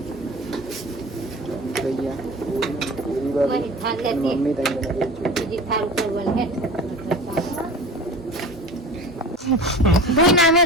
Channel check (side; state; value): both; normal; correlation 0.36